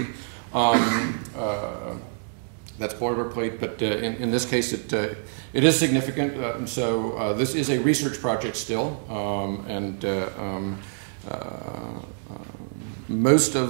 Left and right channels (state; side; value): silent; left; digital silence